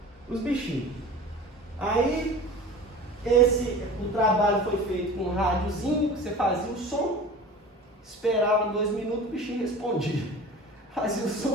os bichinhos. Aí o trabalho foi feito com um rádiozinho, que você fazia o som, esperava 2 minutos, o bichinho respondia. Fazia o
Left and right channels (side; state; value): both; normal; correlation 0.38